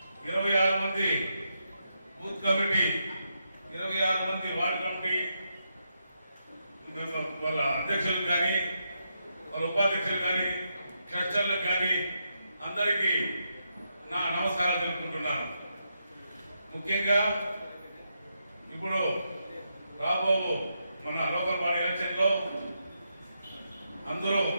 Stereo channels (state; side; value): inverted; both; correlation -0.82